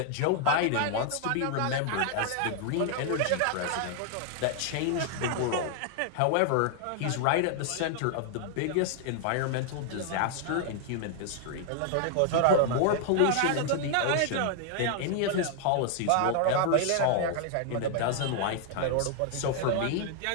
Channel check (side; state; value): both; different; correlation 0.00